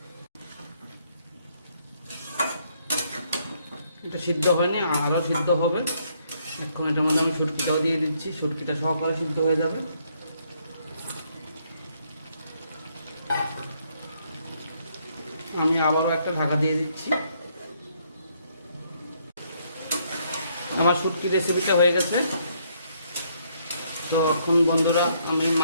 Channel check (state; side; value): inverted; both; correlation -0.70